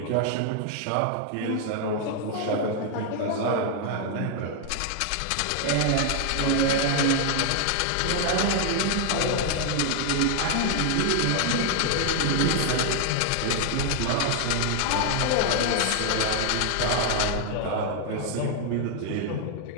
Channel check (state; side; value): different; both; correlation 0.00